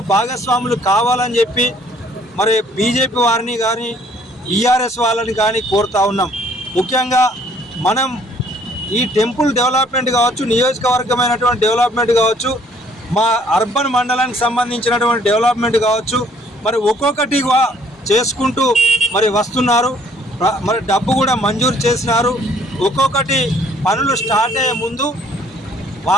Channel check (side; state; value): both; normal; correlation 0.61